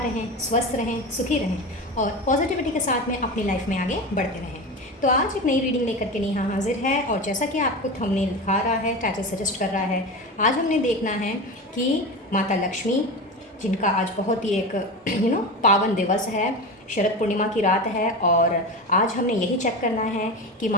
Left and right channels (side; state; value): both; normal; correlation 0.24